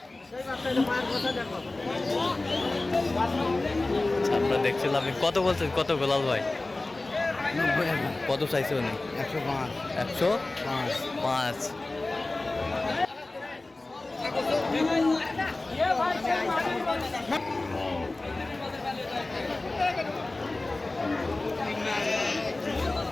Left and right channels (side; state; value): right; quieter; 3.0 dB